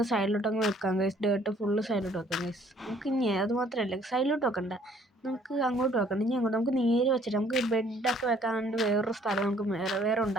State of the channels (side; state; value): both; normal; correlation 0.60